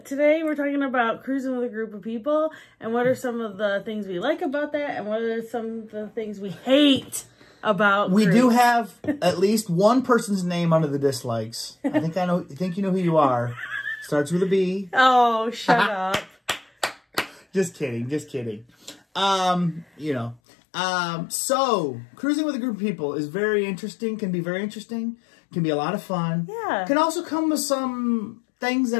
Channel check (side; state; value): right; drops out; at 20.4 s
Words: we're talking about cruising with a group of people. And what are some of the things we like about that? And what are some of the things we hate about We do have at least one person's name under the dislikes. I think you know who you are. Starts with a B. Oh, shut up. Just kidding. So cruising with a group of people is very interesting, can be very interesting, can be a lot of fun. Yeah. Can also come with some things